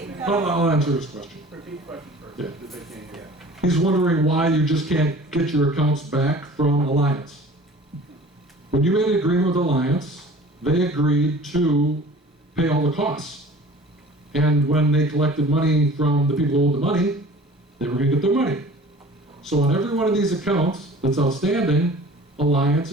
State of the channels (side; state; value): both; normal; correlation 0.45